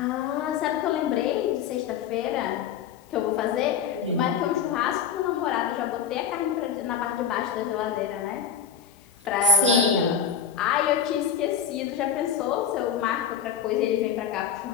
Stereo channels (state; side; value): quieter; right; 7.4 dB